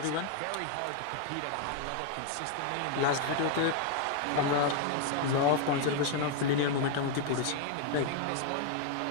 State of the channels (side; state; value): both; different; correlation 0.00